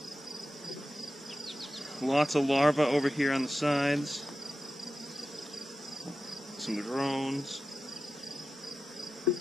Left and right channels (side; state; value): both; normal; correlation 0.92